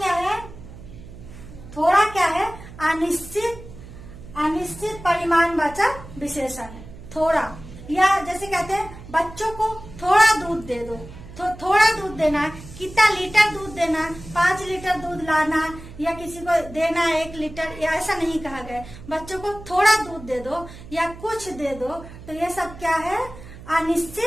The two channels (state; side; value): noise; right; hum, 16 dB below the sound